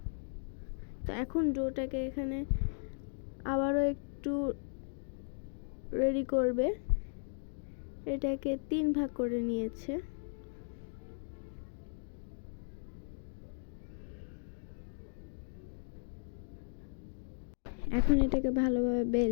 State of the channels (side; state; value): right; silent; digital silence